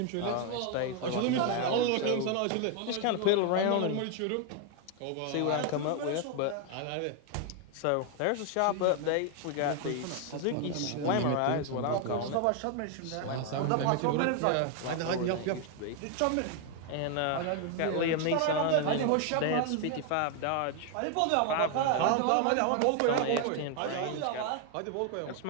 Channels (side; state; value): both; different; correlation 0.01